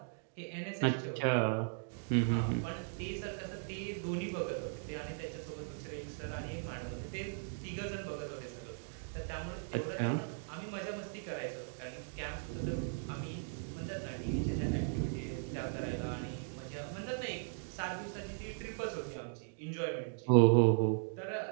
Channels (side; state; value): left; silent; digital silence